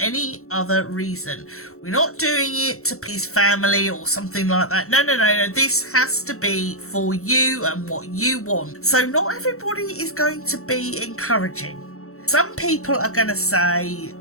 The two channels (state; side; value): late; right; 0.63 ms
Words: other reason. We're not doing it to please family or something like that. No. This has to be for you and what you want. So not everybody is going to be encouraging. Some people are going to say,